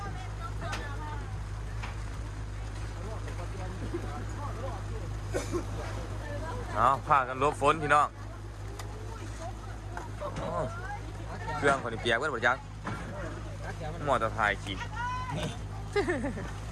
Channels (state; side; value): identical; both; correlation 1.00